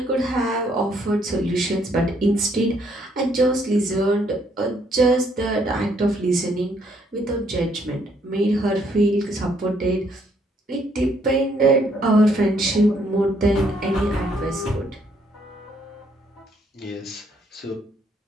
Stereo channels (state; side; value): normal; both; correlation 0.69